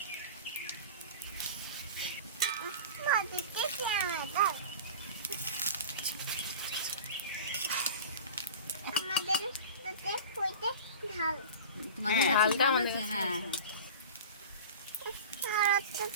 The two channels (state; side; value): inverted; both; correlation -0.32